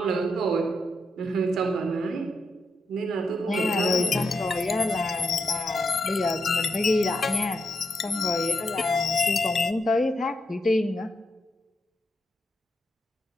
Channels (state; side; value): normal; both; correlation 0.83